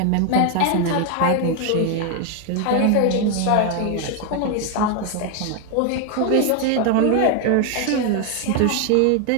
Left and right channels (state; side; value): different; both; correlation 0.01